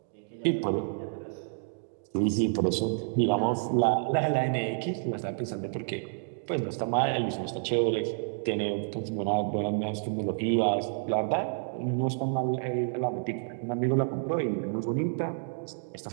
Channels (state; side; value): silent; left; digital silence